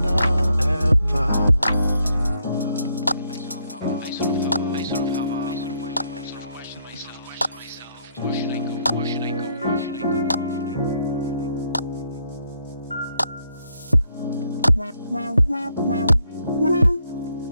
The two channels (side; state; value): both; inverted; correlation -0.74